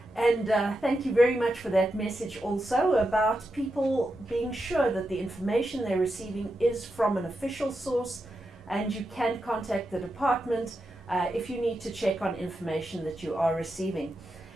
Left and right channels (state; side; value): normal; both; correlation 0.87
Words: And thank you very much for that message also about people being sure that the information they're receiving is from an official source, and you can contact the department if you need to check on information that you are receiving.